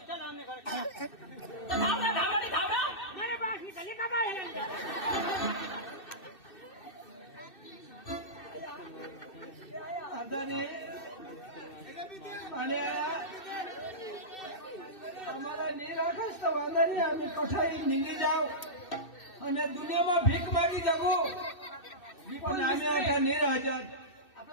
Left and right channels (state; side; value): late; right; 2.6 ms